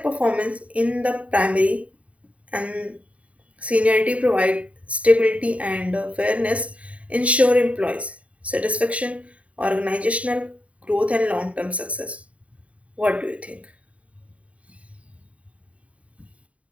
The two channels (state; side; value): late; left; 0.066 ms